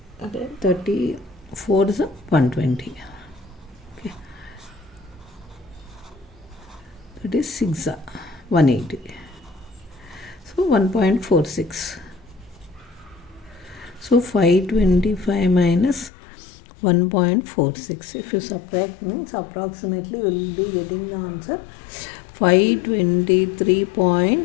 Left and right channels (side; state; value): right; drops out; at 16.1 s